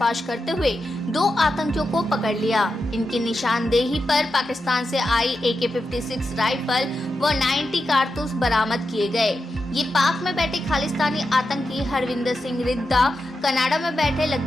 करते हुए 2 आतंकियों को पकड़ लिया। इनकी निशानदेही पर पाकिस्तान से आई AK-56 राइफल व 90 कारतूस बरामद किए गए। ये पाक में बैठे खालिस्तानी आतंकी हरविंदर सिंह रिद्दा, कनाडा में बैठे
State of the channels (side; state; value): both; normal; correlation 0.88